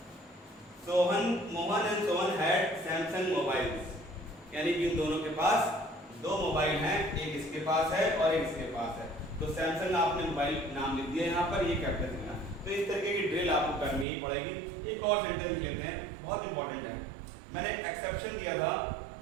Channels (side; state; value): left; drops out; at 14.1 s